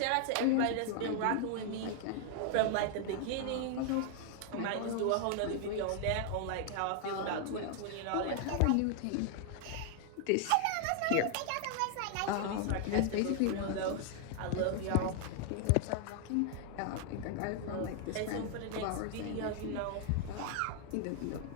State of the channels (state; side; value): different; both; correlation 0.00